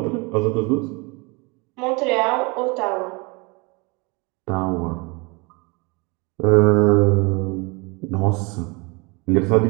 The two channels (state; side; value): quieter; left; 28.5 dB